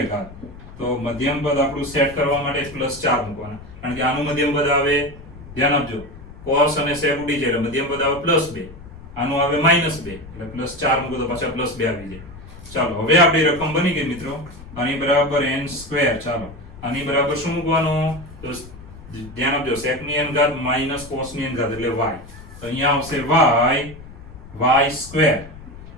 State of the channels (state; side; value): noise; left; rumble, 17 dB below the sound